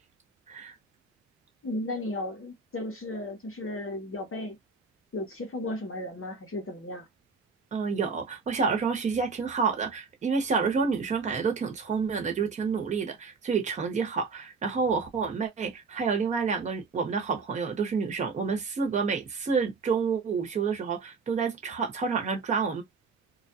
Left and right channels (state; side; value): quieter; left; 4.5 dB